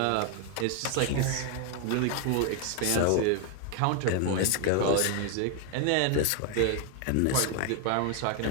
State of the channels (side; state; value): both; different; correlation 0.00